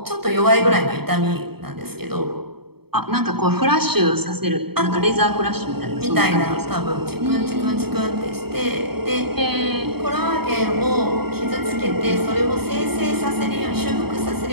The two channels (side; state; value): left; late; 0.96 ms